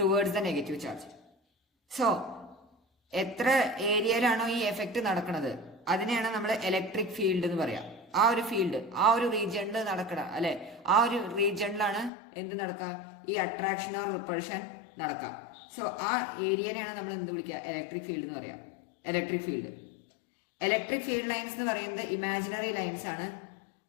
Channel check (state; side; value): drops out; right; at 12.1 s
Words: the negative charge. So എത്ര ഏരിയയിലാണോ ഈ എഫക്റ്റ് നടക്കുന്നത് അതിനെയാണ് നമ്മൾ ഇലക്ട്രിക് ഫീൽഡ് എന്ന് പറയാം. ആ ഒരു ഫീൽഡ്, ആ ഒരു റീജിയണിൽ നടക്കണം, അല്ലെ, ആ ഒരു റീജിയണിലാണ് എന്ത് നടക്കുക, ഈ അട്രാക്ഷൻ ഓർ റിപ്പൾഷൻ നടക്കുക. സോ ആ ഏരിയനെയാണ് നമ്മൾ എന്ത് വിളിക്കുക, ഇലക്ട്രിക് ഫീൽഡ് എന്ന് പറയാം. ഇലക്ട്രിക് ഫീൽഡ് ലൈൻസ് എന്ന് പറയുന്നത് ഇമാജിനറി ലൈൻസ് ആണ്.